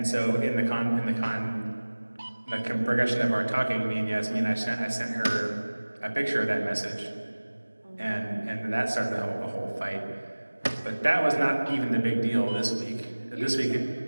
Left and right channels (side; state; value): both; inverted; correlation -1.00